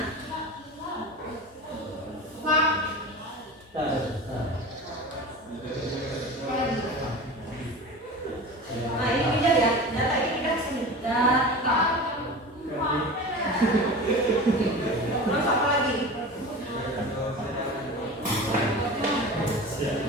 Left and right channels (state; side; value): normal; both; correlation 0.33